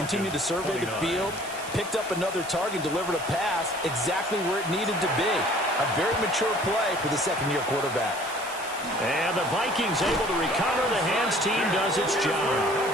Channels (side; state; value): right; noise; hiss, 14 dB below the sound